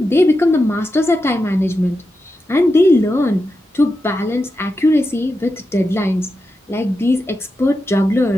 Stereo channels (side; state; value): both; normal; correlation 0.89